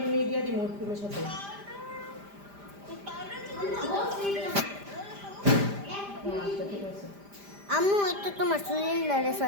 দিয়ে দিব ক্রিমের সাথে? আচ্ছা ঠিক আছে। আম্মু একটু তোমার সিলিন্ডারে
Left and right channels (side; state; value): left; late; 5.0 ms